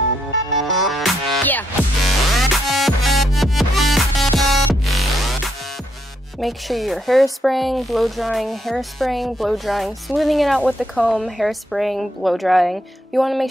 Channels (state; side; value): normal; both; correlation 0.77